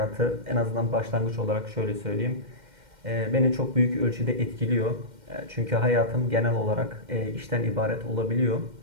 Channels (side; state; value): left; late; 2.1 ms